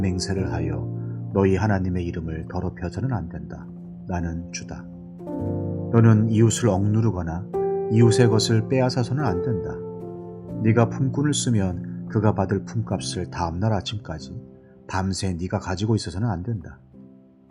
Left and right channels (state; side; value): identical; both; correlation 1.00